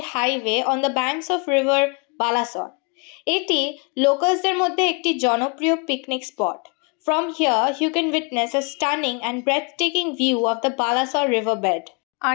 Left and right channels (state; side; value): quieter; right; 33.4 dB